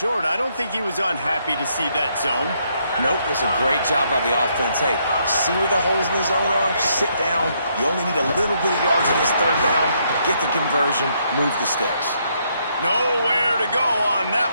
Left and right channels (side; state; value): both; inverted; correlation -0.73